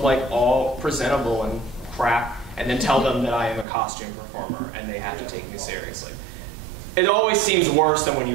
like all presentable and crap, and then tell them that I am a costume performer and they have to take me seriously. It always seems worse than when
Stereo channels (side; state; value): left; drops out; at 3.7 s